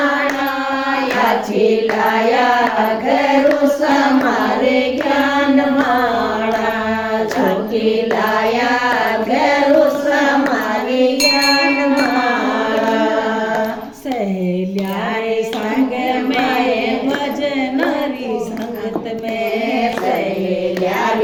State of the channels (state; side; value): identical; both; correlation 1.00